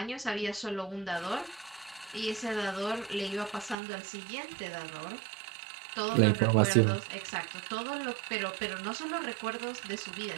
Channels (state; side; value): drops out; left; at 3.8 s